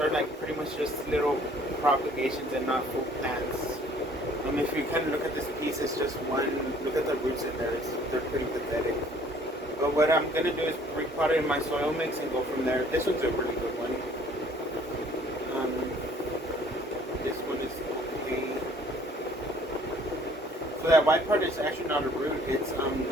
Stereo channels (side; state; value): both; normal; correlation 0.57